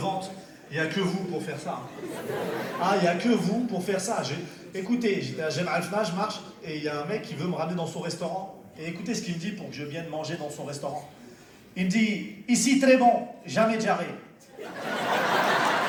Il n'y a que vous pour faire ça. Ah, il n'y a que vous pour faire ça. Écoutez, j'étais à Jemaa el-Fna, je marche, et il y a un mec qui veut me ramener dans son restaurant. Et écoutez ce qu'il me dit pour que je vienne manger dans son restaurant. Il me dit, ici très bon, jamais diarrhée.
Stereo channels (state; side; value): identical; both; correlation 1.00